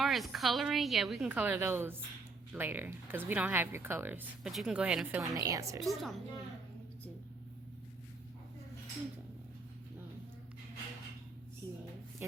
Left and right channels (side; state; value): left; quieter; 3.8 dB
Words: as coloring, yeah, we can color those later because we don't have your colors. But you can go ahead and fill in the answers. 2 times 1. 2. 0.